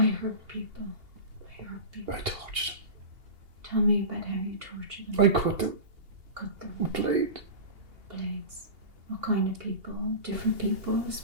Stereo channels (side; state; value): left; late; 2.8 ms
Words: hurt people. I tortured them. Tell me about how you tortured them. I cut them Cut them. with a blade. Blades. What kind of people? Different people?